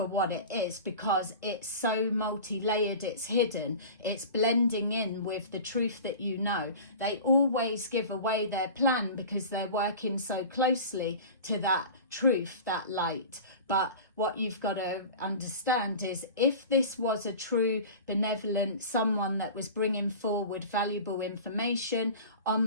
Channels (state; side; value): inverted; both; correlation -0.36